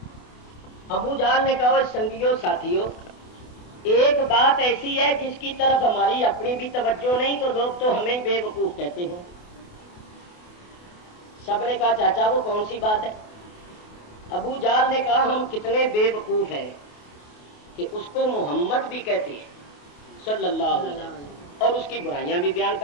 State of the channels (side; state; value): right; late; 28 ms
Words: ابو جہل نے کہا سنگیوں ساتھیوں، ایک بات ایسی ہے جس کی طرف ہماری اپنی بھی توجہ نہیں تو لوگ تو ہمیں بے وقوف کہتے ہیں۔ سب نے کہا چاچا وہ کون سی بات ہے؟ ابو جہل نے کہا ہم کتنے بے وقوف ہیں کہ اس کو محمد بھی کہتے ہیں صلی اللہ علیہ وسلم، اور اس کی برائیاں بھی بیان